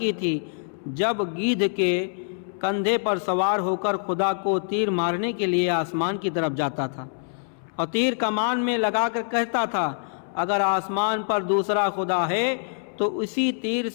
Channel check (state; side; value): silent; right; 62 dB below the other